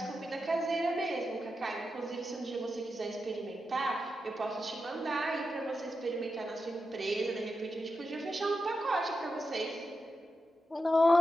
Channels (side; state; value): both; normal; correlation 0.89